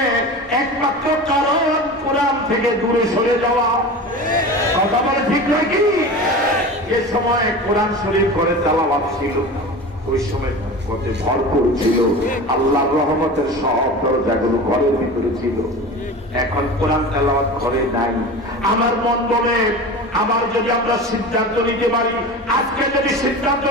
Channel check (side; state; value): both; normal; correlation 0.32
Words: একমাত্র কারণ কোরআন থেকে দূরে সরে যাওয়া। কথা বলে ঠিক নয় কি? যে সময় কোরআন শরীফ করে তেলাওয়াত ছিল, ওই সময় ভরপুর ছিল, আল্লাহর রহমতের সব দরজাগুলো ঘরের ভিতরে ছিল। এখন কোরআন তেলাওয়াত ঘরে নাই। আমার মন বলে, আমার যদি আমরা সিদ্ধান্ত নিতে পারি, আজকে যদি সিদ্ধান্ত